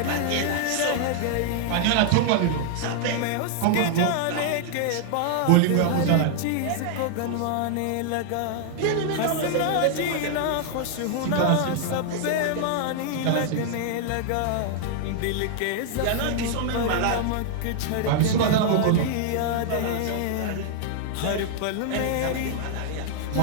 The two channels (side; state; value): both; different; correlation -0.01